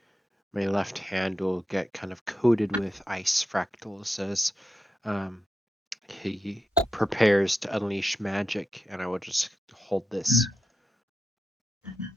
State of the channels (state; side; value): normal; both; correlation 0.88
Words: left hand will get kind of coated with ice fractals as um, he prepares to unleash magic, and I will just hold this.